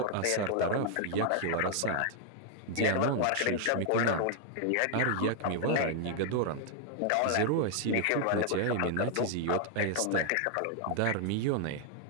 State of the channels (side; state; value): both; different; correlation 0.00